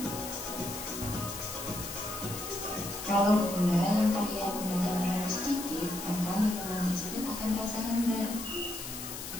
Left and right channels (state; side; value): noise; left; hiss, 8 dB below the sound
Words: Kalau gula yang kalian gunakan terlalu sedikit, maka minuman tersebut akan terasa hambar.